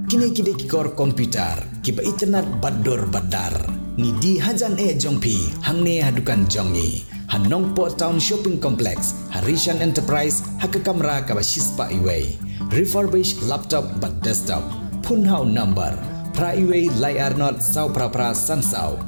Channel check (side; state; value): both; inverted; correlation -1.00